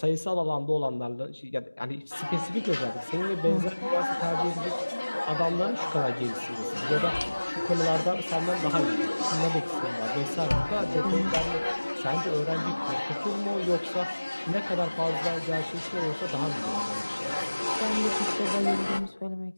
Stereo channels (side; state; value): both; inverted; correlation -1.00